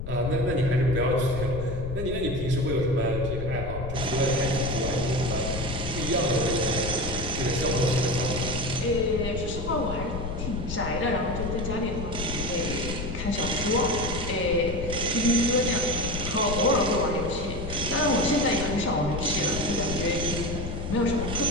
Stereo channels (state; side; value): noise; left; rumble, 5 dB below the sound